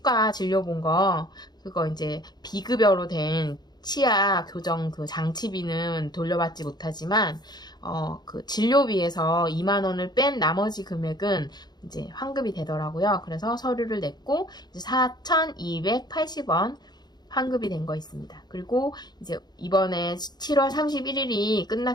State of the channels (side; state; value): right; late; 0.20 ms